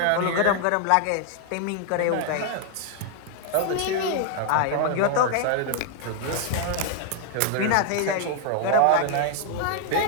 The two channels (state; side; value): different; both; correlation 0.00